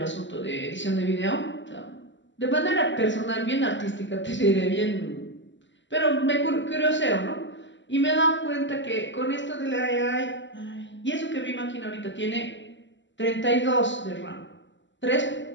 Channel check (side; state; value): right; late; 0.54 ms